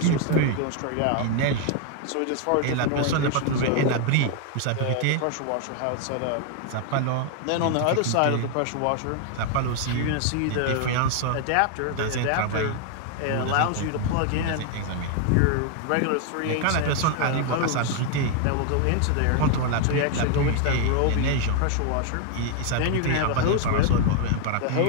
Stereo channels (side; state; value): both; different; correlation 0.00